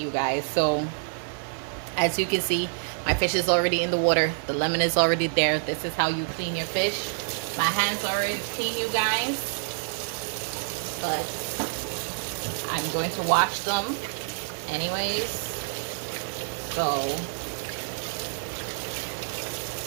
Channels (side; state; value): left; silent; 60 dB below the other